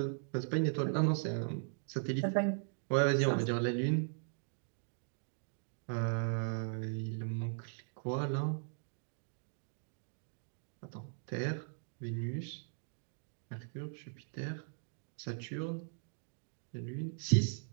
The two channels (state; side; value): silent; left; digital silence